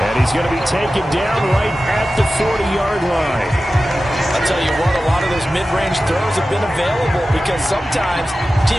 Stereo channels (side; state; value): both; normal; correlation 0.94